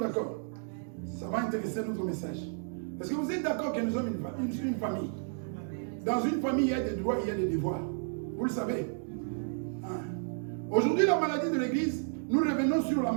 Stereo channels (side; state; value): left; silent; 56 dB below the other